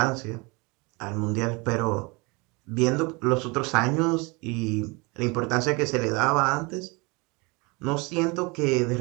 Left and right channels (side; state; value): left; quieter; 27.7 dB